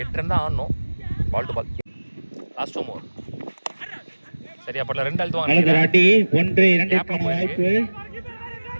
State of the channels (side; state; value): both; inverted; correlation -1.00